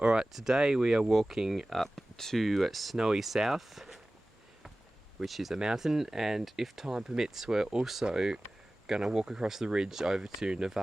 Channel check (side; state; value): both; normal; correlation 0.97